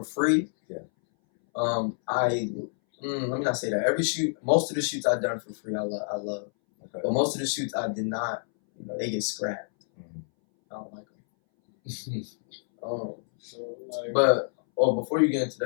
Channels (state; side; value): silent; right; 59 dB below the other